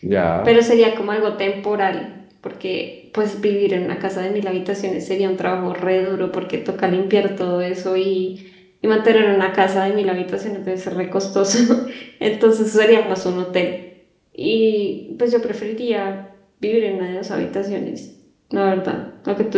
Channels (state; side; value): identical; both; correlation 1.00